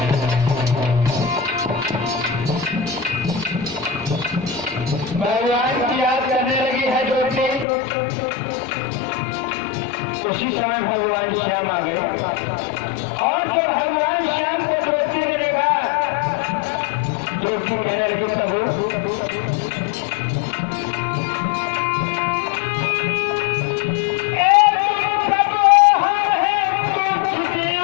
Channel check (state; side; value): drops out; right; at 7.7 s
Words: भगवान की याद करने लगी है द्रौपदी। उसी समय भगवान श्याम आ गए और जब भगवान श्याम को द्रौपदी ने देखा, द्रौपदी कहने लगी प्रभु